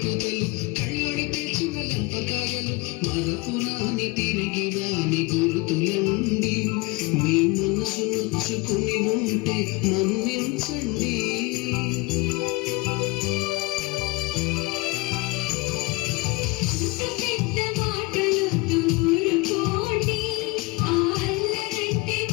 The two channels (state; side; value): quieter; right; 23.3 dB